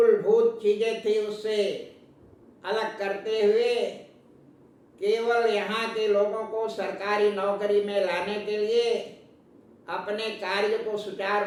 चीजें थी उससे अलग करते हुए केवल यहाँ के लोगों को सरकारी नौकरी में लाने के लिए, अपने कार्य को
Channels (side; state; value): both; identical; correlation 1.00